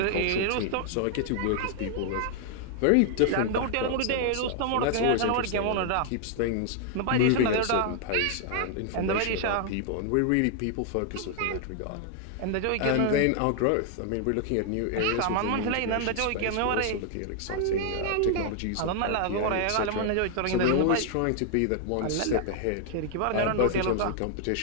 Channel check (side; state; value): both; different; correlation 0.00